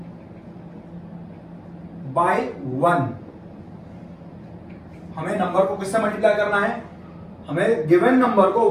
by 1. हमें नंबर को किससे मल्टीप्लाई करना है? हमें गिवन नंबर को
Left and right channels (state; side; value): identical; both; correlation 1.00